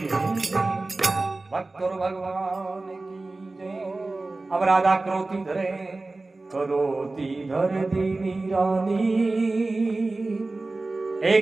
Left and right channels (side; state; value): left; quieter; 3.2 dB